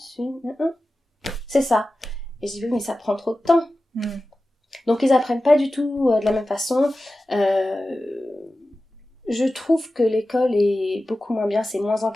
8, 1. C'est ça. Et je dis, oui, mais ça prend trop de temps. Donc ils apprennent pas du tout de la même façon. Je trouve que l'école est beaucoup moins bien, c'est moins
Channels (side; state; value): both; normal; correlation 0.94